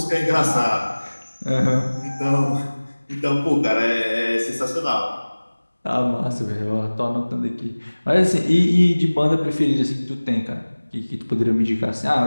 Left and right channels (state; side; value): inverted; both; correlation -1.00